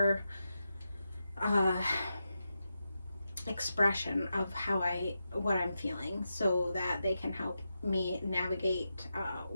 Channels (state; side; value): inverted; both; correlation -0.88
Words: uh, expression of what I'm feeling, so that they can help me navigate